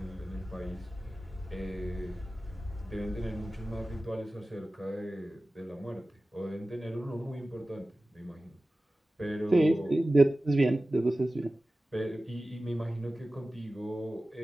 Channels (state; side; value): normal; both; correlation 0.96